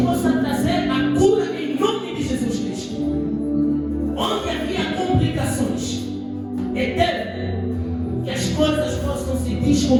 possa trazer a cura em nome de Jesus Cristo. Onde havia complicações, eterno, que as coisas possam se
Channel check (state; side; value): identical; both; correlation 1.00